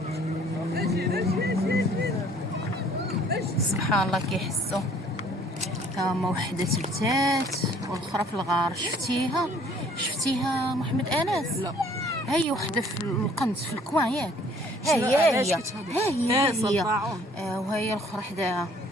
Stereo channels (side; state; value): both; normal; correlation 0.57